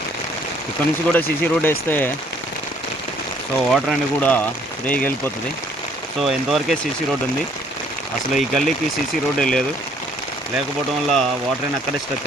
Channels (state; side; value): normal; both; correlation 0.62